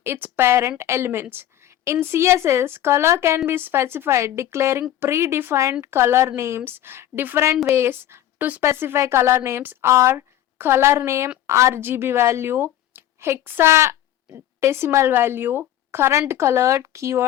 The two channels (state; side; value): quieter; right; 12.4 dB